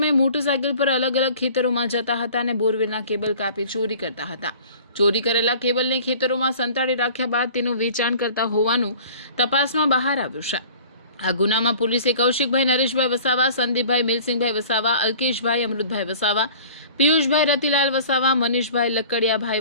મોટરસાયકલ પર અલગ અલગ ખેતરોમાં જતા હતા અને બોરવેલના કેબલ કાપી ચોરી કરતા હતા। ચોરી કરેલા કેબલને ખેતરોમાં સંતાડી રાખ્યા બાદ તેનું વેચાણ કરતા હોવાનું તપાસમાં બહાર આવ્યું છે। આ ગુનામાં પોલીસે કૌશિકભાઈ નરેશભાઈ વસાવા, સંદીપભાઈ મિલસિંહભાઈ વસાવા, અલ્કેશભાઈ અમૃતભાઈ વસાવા, પિયુષભાઈ રતિલાલ વસાવા, મનીષભાઈ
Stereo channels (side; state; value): both; inverted; correlation -0.45